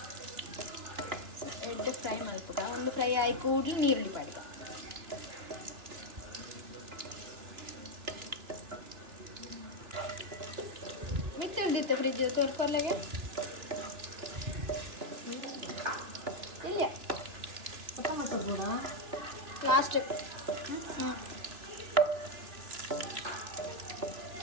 ಎಡ್ಡೆ ಫ್ರೈ ಮಲ್ಪುಗ ಒಂದು ಫ್ರೈ ಆಗಿ ಕೂಡಲಿ ನೀರುಳ್ಳಿ ಪಾಡಿಗ ಮಿತ್ತೆ ಹಿಡ್ದಿತ್ತೆ ಫ್ರಿಜ್ ತೋರ್ಕೊರ್ಲೆಗೆ ಇಲ್ಲ ಲಾಸ್ಟ್ ಹ್ಞೂ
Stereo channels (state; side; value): late; left; 2.9 ms